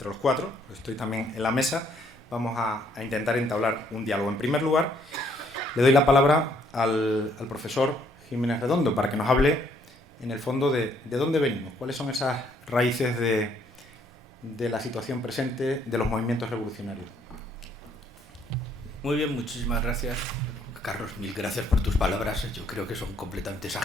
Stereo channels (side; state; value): both; normal; correlation 0.67